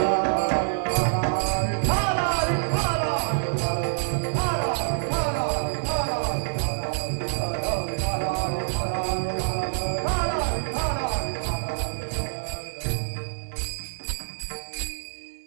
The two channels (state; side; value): silent; left; digital silence